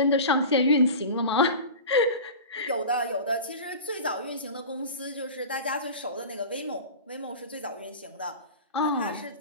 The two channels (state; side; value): inverted; both; correlation -0.33